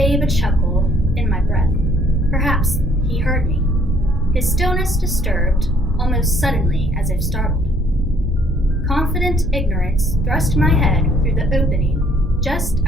a chuckle in my breath. Perhaps he heard me. His stillness disturbed, almost suddenly as if startled. Confident ignorance thrust my head through the opening, just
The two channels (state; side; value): normal; both; correlation 0.62